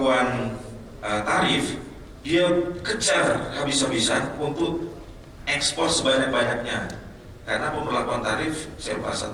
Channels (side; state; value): both; identical; correlation 1.00